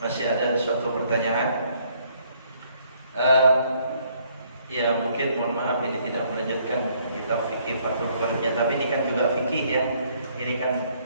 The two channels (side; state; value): both; inverted; correlation -0.66